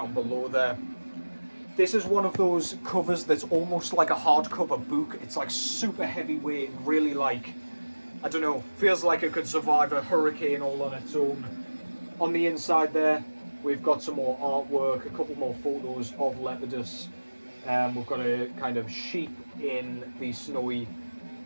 below there. This is one of those covers that's almost like a hardcover book. It's like super heavyweight, really like, I don't know, feels like it could survive a hurricane all on its own. On the inside there, we've got some more artwork, a couple more photos of Lepidus. We've got a kind of sheep in the snowy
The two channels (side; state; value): both; inverted; correlation -1.00